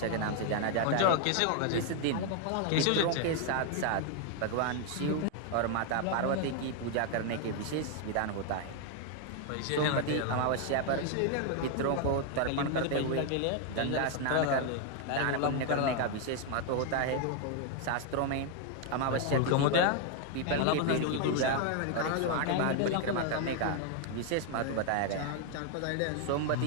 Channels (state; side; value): different; both; correlation 0.01